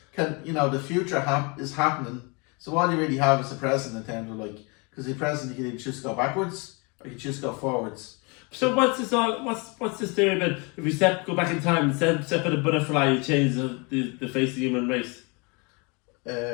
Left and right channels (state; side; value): quieter; right; 30.6 dB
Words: the future is happening. So all you really have is the present in terms of because the present you can either choose to go backwards or you choose to go forwards. So what's this theory about if you go back in time and step in a butterfly, you change the face of the human race?